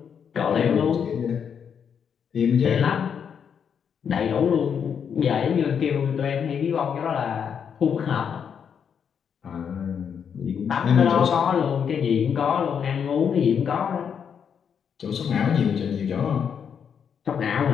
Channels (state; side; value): quieter; right; 7.4 dB